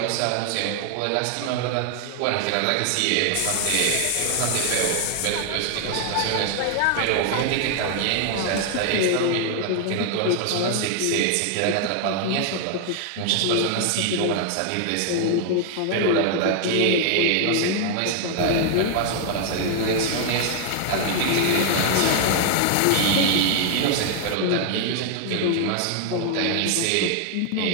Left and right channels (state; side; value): different; both; correlation 0.00